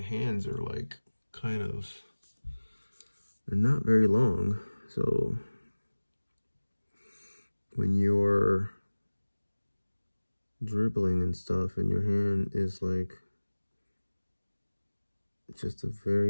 are like they're not very long. So when you're dribbling and stuff and your hand is like just a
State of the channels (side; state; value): both; inverted; correlation -1.00